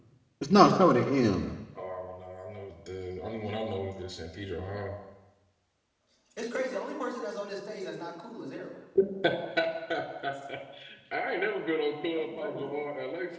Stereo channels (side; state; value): both; identical; correlation 1.00